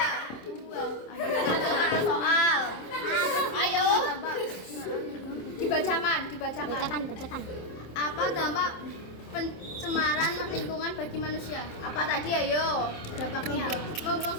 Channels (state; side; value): late; right; 27 ms